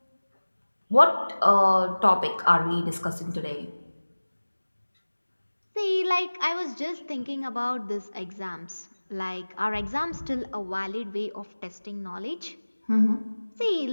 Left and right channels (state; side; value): inverted; both; correlation -1.00